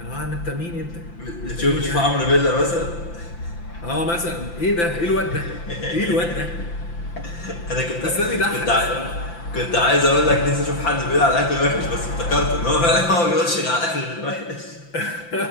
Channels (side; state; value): right; late; 5.9 ms